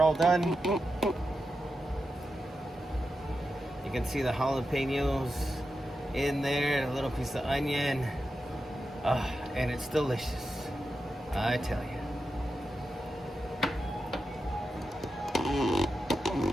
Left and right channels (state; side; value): normal; both; correlation 0.89